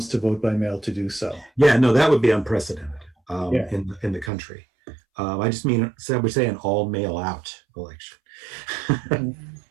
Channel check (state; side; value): drops out; left; at 4.3 s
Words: to vote by mail to do so. Yeah, no, that would be unprecedented in the country. I just mean, so we say an all mail out election.